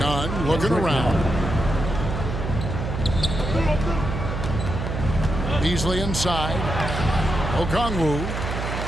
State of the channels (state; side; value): noise; right; hum, 4 dB below the sound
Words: looking around. Beasley inside. Okongwu.